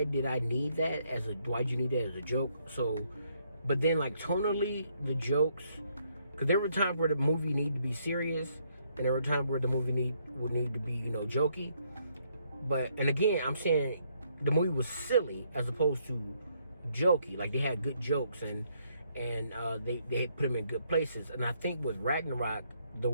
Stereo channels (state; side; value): inverted; both; correlation -0.71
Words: did I need that why'd you need that as a joke? So, but then, like, tonally, the jokes, because there were times where the movie needed to be serious, and there were times where the movie would need to be, jokey. And again, I'm saying the movie was silly as opposed to jokey. Like, they had good jokes, and they put them in good places. And I think with Ragnarok, the